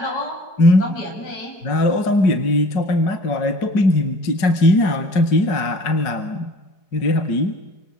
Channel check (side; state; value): right; late; 4.8 ms